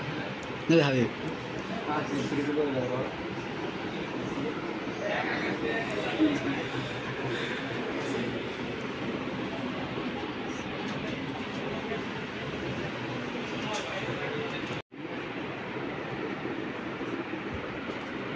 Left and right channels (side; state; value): both; identical; correlation 1.00